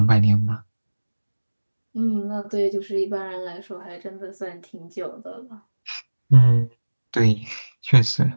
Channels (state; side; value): inverted; both; correlation -1.00